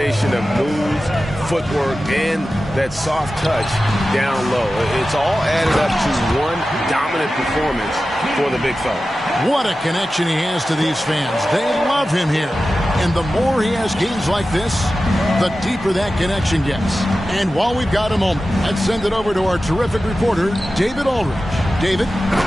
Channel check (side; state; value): both; normal; correlation 0.94